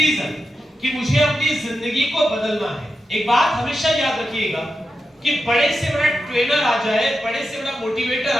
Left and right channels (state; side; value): normal; both; correlation 0.89